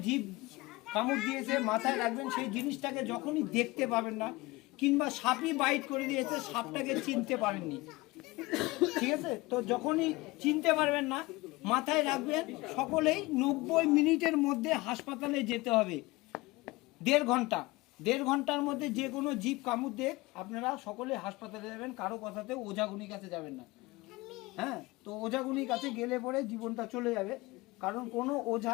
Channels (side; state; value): right; quieter; 21.7 dB